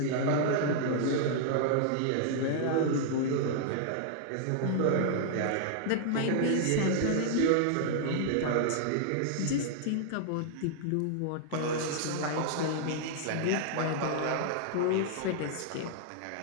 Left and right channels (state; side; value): different; both; correlation -0.01